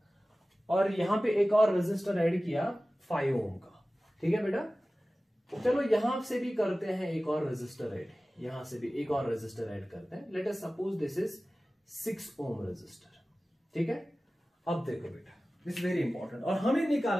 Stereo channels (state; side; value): normal; both; correlation 0.97